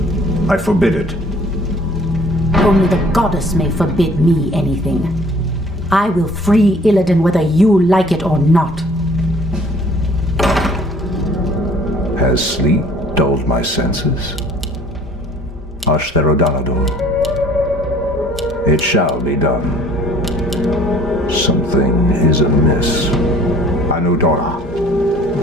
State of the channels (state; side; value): normal; both; correlation 0.54